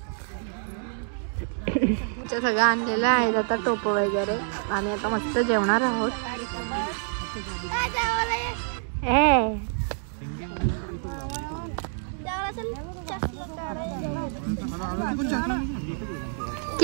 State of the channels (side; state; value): left; silent; digital silence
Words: सगळं आणलेलं आहे आता टोप वगैरे, आम्ही आता मस्त जेवणार आहोत.